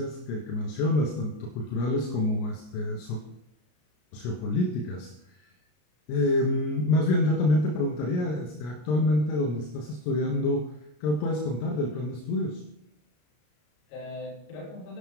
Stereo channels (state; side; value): late; right; 33 ms